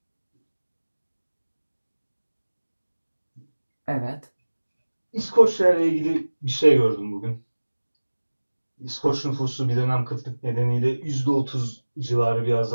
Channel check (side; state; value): both; inverted; correlation -1.00